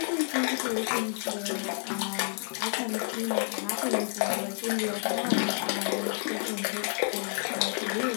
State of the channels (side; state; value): right; silent; 58 dB below the other